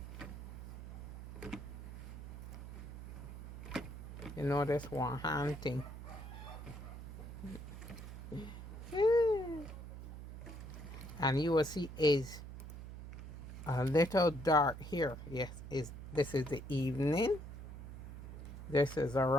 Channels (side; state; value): right; noise; hum, 10 dB below the sound